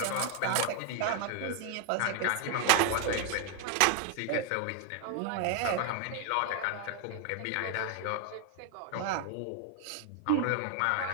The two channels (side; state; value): both; different; correlation 0.01